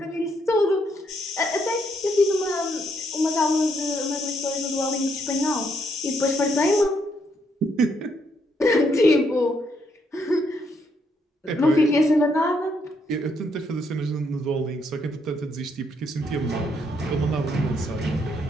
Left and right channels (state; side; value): normal; both; correlation 0.74